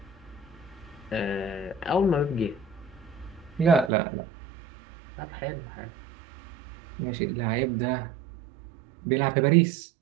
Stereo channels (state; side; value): drops out; left; at 3.9 s